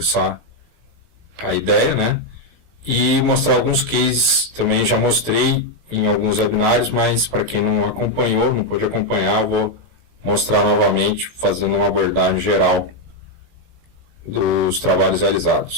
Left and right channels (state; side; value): late; left; 18 ms